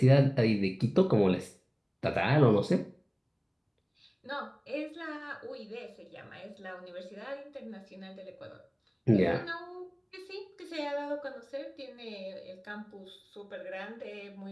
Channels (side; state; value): both; identical; correlation 1.00